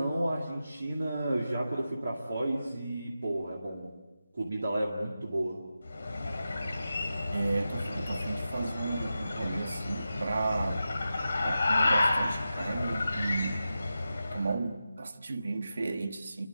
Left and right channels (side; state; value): both; inverted; correlation -0.91